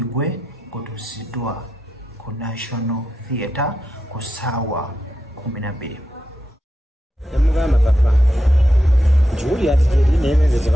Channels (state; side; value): normal; both; correlation 0.87